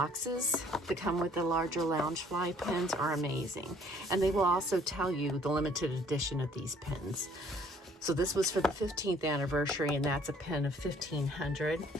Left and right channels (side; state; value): both; normal; correlation 0.59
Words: that come with the larger Loungefly pens are amazing. And they will also tell you the limited edition of these pens. So this was for the 15th anniversary, and that's a pen of 1500.